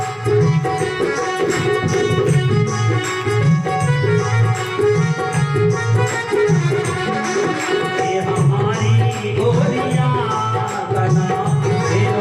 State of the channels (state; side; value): identical; both; correlation 1.00